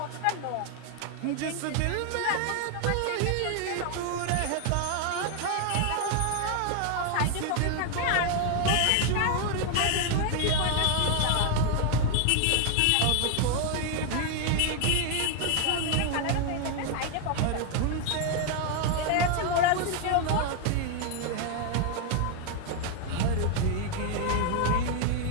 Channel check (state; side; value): different; both; correlation 0.00